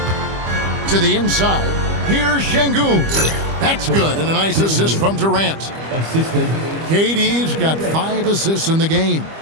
To the inside, here's Sengun. That's good, and a nice assist from Durant. Assisted. KD's got 5 assists in the game.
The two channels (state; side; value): late; left; 25 ms